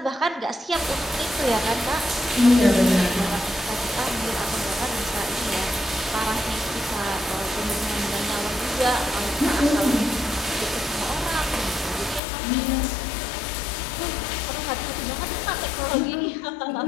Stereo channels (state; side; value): drops out; right; at 12.2 s